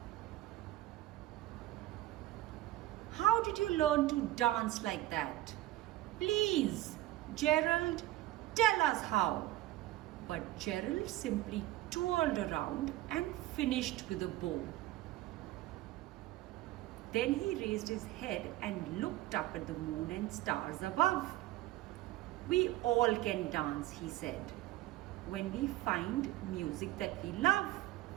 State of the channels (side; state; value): left; quieter; 16.2 dB